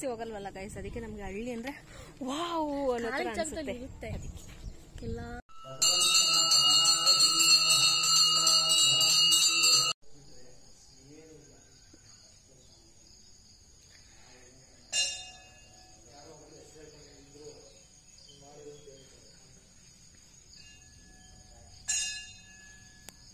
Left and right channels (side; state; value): both; identical; correlation 1.00